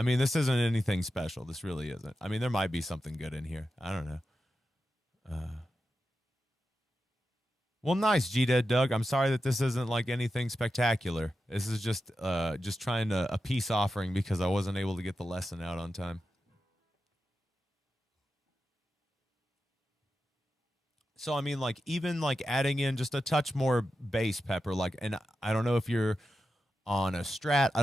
mean, this isn't anything special. This really isn't. I mean, there might be something good in here. I don't know. Well, nice, G Dead Doug. I'm sorry that this isn't like anything spectacular. This is just trying to a peace offering because I wasn't able to get the lesson out on time. So I mean, like even like adding in just a touch more bass, Pepper. Like, and I don't know if you're on a Strat. I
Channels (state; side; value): normal; both; correlation 0.90